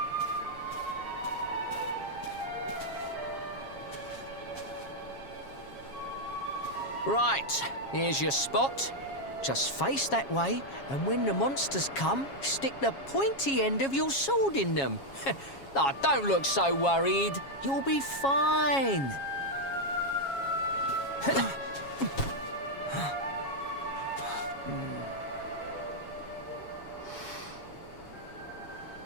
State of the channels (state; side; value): late; right; 7.3 ms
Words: Right, here's your spot. Just face that way, and when the monsters come, stick the pointy end of your sword in them. Oh, don't look so worried. You'll be fine.